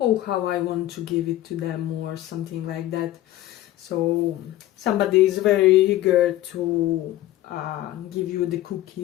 how I want to give it to them, or something like that. So somebody is very eager to give you the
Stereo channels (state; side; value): quieter; right; 14.8 dB